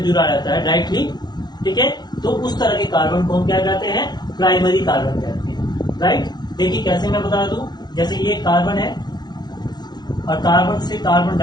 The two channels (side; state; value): right; late; 0.20 ms